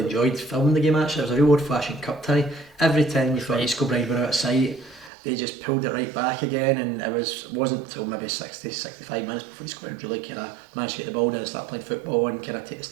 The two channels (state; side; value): drops out; left; at 5.1 s